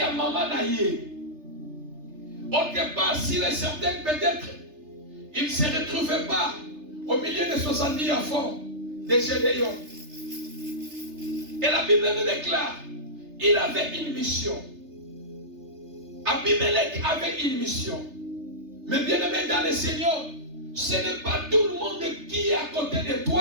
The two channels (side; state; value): left; late; 3.3 ms